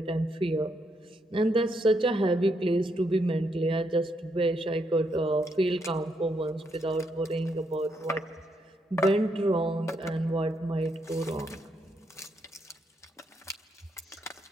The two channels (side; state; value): both; normal; correlation 0.77